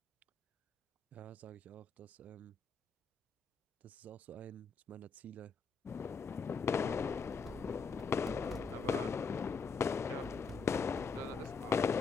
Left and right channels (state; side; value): quieter; right; 5.0 dB